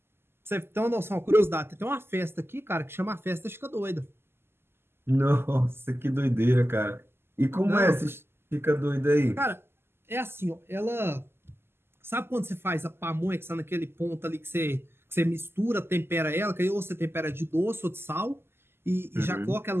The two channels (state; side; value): late; left; 0.12 ms